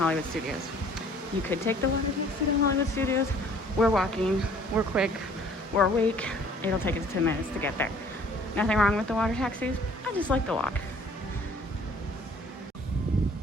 Studios. You could take the water taxi to Hollywood Studios. We're walking, we're quick, we're awake. It'll take us 10 minutes to get there. Nothing wrong with the water taxis. I just like the walk.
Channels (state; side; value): normal; both; correlation 0.55